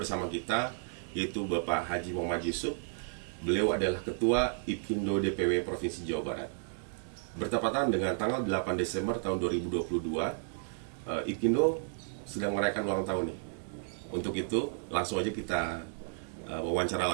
kita yaitu Bapak Haji Muhammad Yusuf. Beliau adalah Ketua IPKINDO DPW Provinsi Jawa Barat. Bertepatan dengan tanggal 8 Desember tahun 2022, IPKINDO sedang merayakan ulang tahun nih. Untuk itu, langsung aja kita wawancara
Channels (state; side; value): silent; left; 56 dB below the other